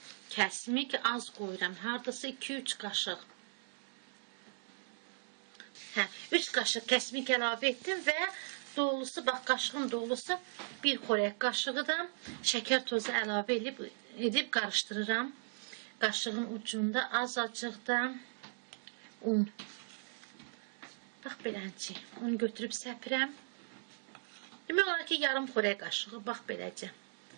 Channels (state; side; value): silent; left; digital silence